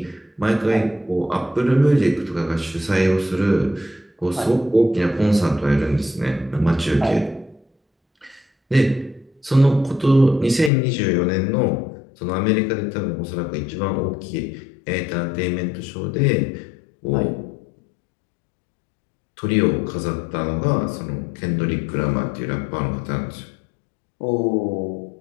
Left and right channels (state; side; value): drops out; right; at 10.7 s